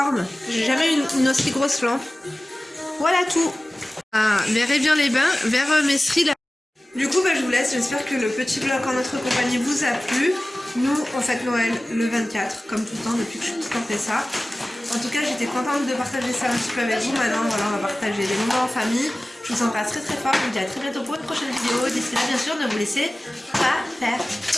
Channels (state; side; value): normal; both; correlation 0.97